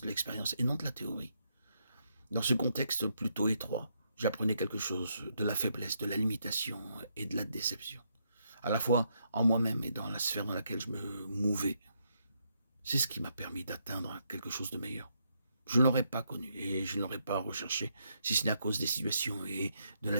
de l'expérience et non de la théorie. Dans ce contexte plutôt étroit, j'apprenais quelque chose de la faiblesse, de la limitation et de la déception, à la fois en moi-même et dans la sphère dans laquelle je me mouvais. C'est ce qui m'a permis d'atteindre quelque chose de meilleur. Je ne l'aurais pas connu et je ne l'aurais pas recherché, si ce n'est à cause des situations et de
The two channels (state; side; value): inverted; both; correlation -0.77